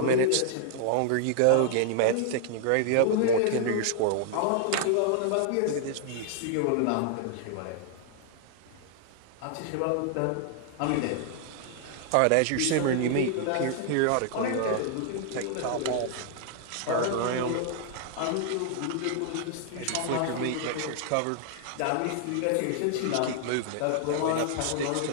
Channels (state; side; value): different; both; correlation 0.00